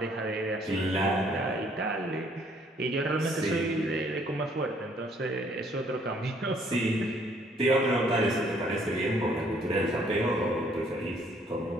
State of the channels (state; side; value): normal; both; correlation 0.64